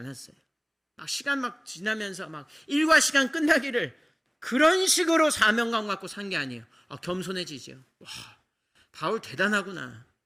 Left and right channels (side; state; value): both; identical; correlation 1.00